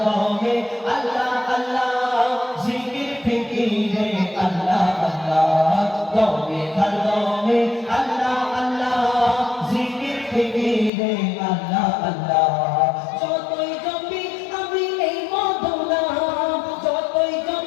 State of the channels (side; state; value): right; drops out; at 10.9 s